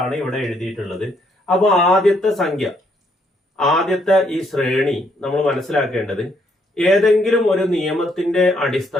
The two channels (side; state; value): both; normal; correlation 0.71